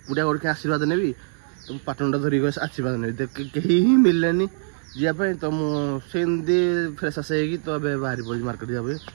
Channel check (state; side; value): silent; left; digital silence